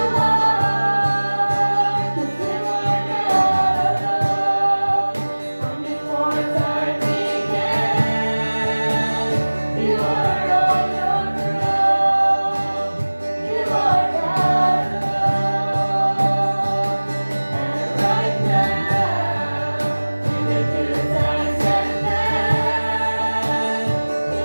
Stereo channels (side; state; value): both; inverted; correlation -1.00